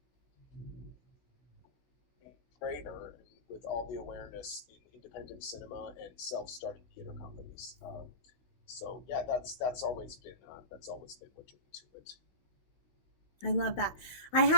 greater with all the awareness in independent cinema and self-starting theater companies. So yeah, that's always been what drew me to it. I love that. I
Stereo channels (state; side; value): late; right; 16 ms